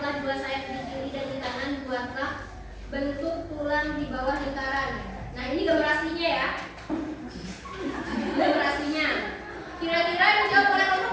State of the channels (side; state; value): both; identical; correlation 1.00